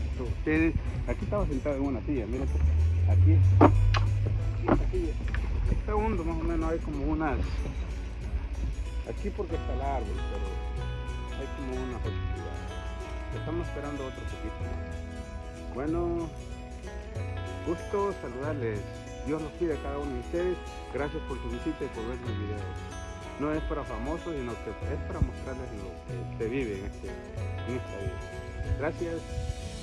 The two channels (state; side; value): identical; both; correlation 1.00